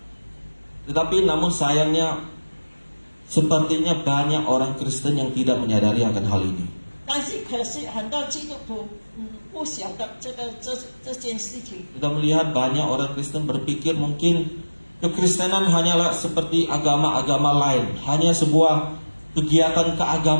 Tetapi namun sayangnya, sepertinya banyak orang Kristen yang tidak menyadari akan hal ini. 但是可是很多基督徒不晓得这件事情。 Kita melihat banyak orang Kristen berpikir mungkin Kekristenan hanyalah seperti agama-agama lain, hanya sebuah kegiatan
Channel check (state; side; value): inverted; both; correlation -1.00